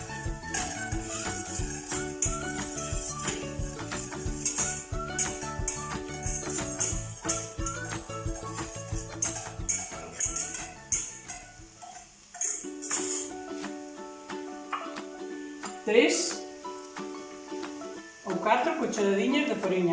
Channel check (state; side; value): identical; both; correlation 1.00